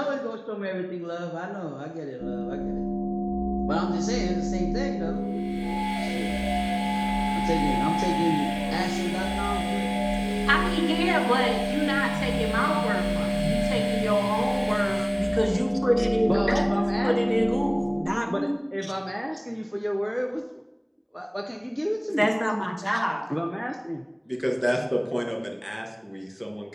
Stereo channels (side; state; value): both; identical; correlation 1.00